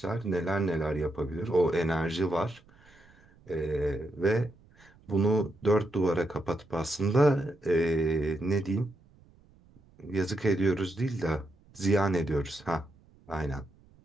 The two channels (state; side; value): noise; right; rumble, 28 dB below the sound